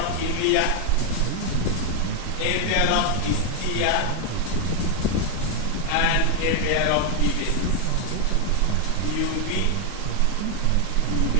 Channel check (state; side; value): different; both; correlation 0.01